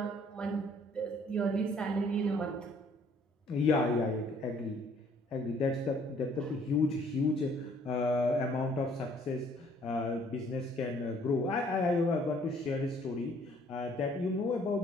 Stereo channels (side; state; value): both; normal; correlation 0.61